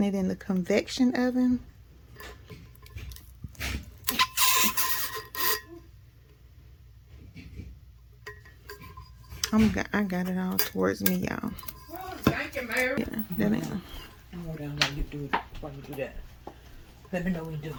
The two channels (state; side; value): identical; both; correlation 1.00